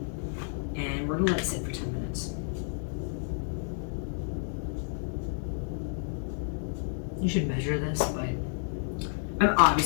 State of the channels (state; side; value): silent; right; digital silence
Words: and we're gonna let it sit for 10 minutes. You should measure this, but I'm